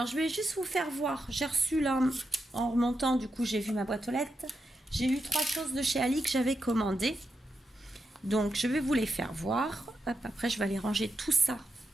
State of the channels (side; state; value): both; normal; correlation 0.86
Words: je vais juste vous faire voir. J'ai reçu là, en remontant, du coup, j'ai vu ma boîte aux lettres. J'ai eu 3 choses de chez Ali que j'avais commandées. Donc, je vais vous les faire voir. Hop, après, je vais aller ranger tout ça